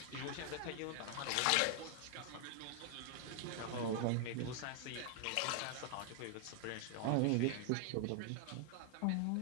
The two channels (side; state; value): both; different; correlation 0.00